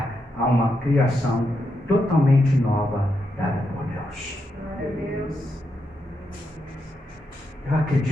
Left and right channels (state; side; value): normal; both; correlation 0.83